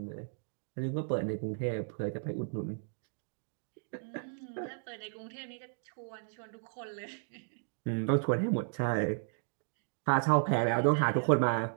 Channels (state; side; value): silent; left; digital silence